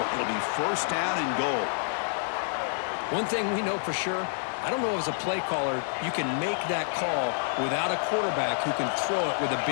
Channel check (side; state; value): right; silent; 59 dB below the other